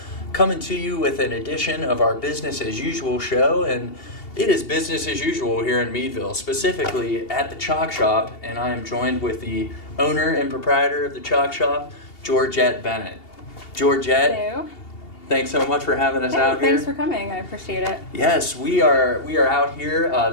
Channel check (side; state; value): right; late; 2.8 ms